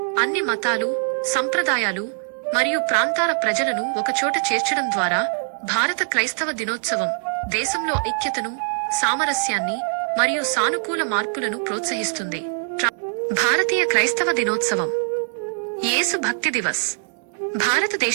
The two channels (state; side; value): silent; left; digital silence